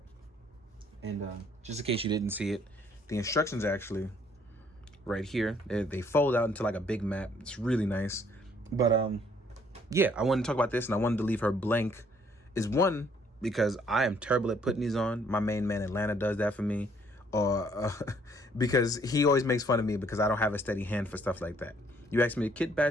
And just in case you didn't see it, the instructions are actually right here. They fold out into like a big map. It's really nice. But yeah, I wanted to talk about this, and I wanted to leave her blank. Is one, because I am terrible at putting these on. My main man Atlanta does that for me. Or because he always makes fun of me because I don't have a steady hand for stuff like that. You ask me to kit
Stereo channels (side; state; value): both; normal; correlation 0.64